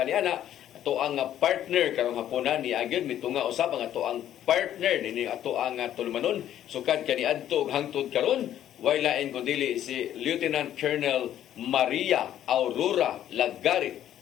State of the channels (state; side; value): quieter; right; 11.4 dB